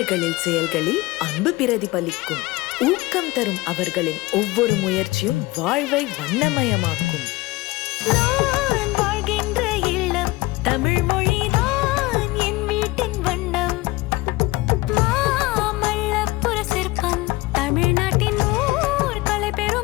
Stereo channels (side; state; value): right; quieter; 20.8 dB